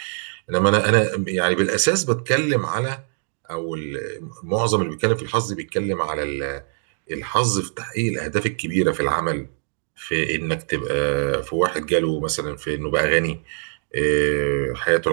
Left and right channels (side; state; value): left; silent; digital silence